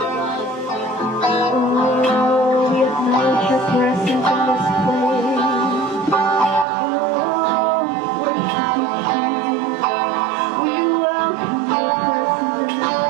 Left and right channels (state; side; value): drops out; left; at 6.7 s